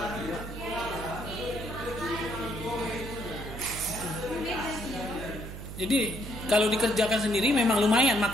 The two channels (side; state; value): right; noise; hum, 10 dB below the sound